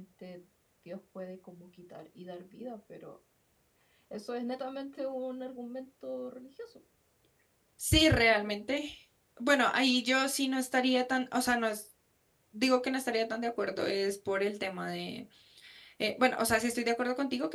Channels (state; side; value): identical; both; correlation 1.00